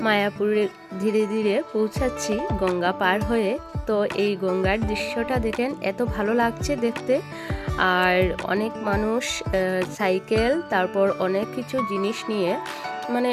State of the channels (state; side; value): identical; both; correlation 1.00